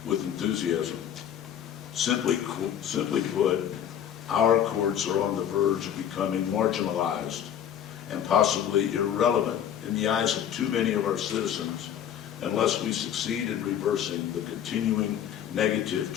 with enthusiasm. Simply put, our courts are on the verge of becoming marginalized and possibly irrelevant in the eyes of too many of our citizens unless we succeed in reversing the continuing negative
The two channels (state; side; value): quieter; right; 9.7 dB